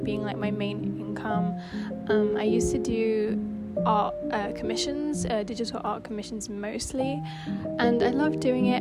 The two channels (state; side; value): identical; both; correlation 1.00